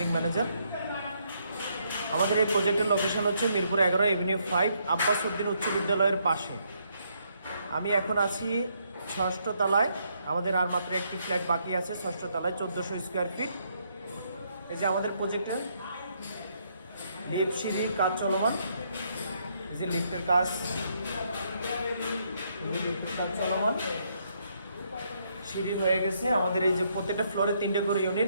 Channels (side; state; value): both; inverted; correlation -0.74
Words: ম্যানেজার। আমাদের এই প্রজেক্টের লোকেশন হচ্ছে মিরপুর 11 এভিনিউ 5 আব্বাস উদ্দিন উচ্চ বিদ্যালয়ের পাশে। আমি এখন আছি 6ষ্ঠ তলায়। আমাদের আর মাত্র একটি ফ্ল্যাট বাকি আছে 6ষ্ঠ তলায়, 1400 স্কোয়ার ফিট। এই যে আমাদের প্রজেক্টের লিফট সিঁড়ি কাজ চলমান, এই যে লিফটের কাজ চলমান, সিঁড়ি হয়ে গেছে। আমাদের এই যে প্রত্যেকটা ফ্লোরে 3টে করে ইউনিট,